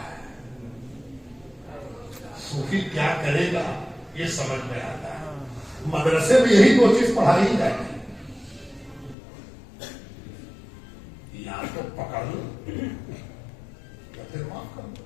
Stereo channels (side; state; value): right; drops out; at 9.2 s